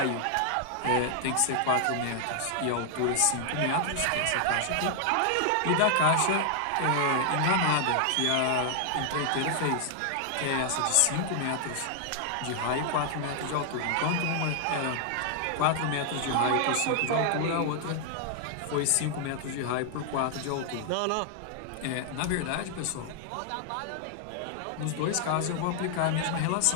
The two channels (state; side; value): different; both; correlation 0.00